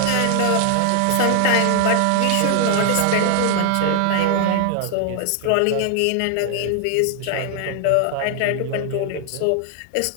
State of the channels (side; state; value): both; different; correlation 0.00